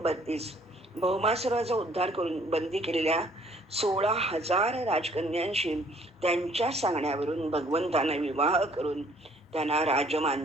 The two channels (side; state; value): both; normal; correlation 0.60